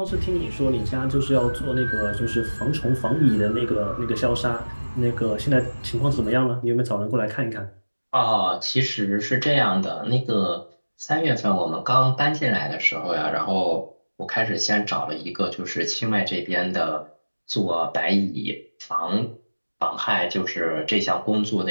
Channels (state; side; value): inverted; both; correlation -1.00